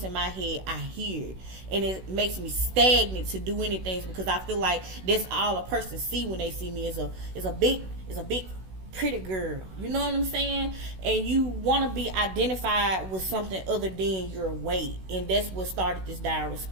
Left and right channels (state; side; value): late; left; 16 ms